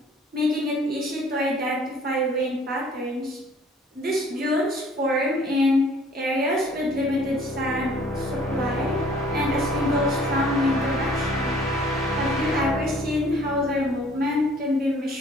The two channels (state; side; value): normal; both; correlation 0.55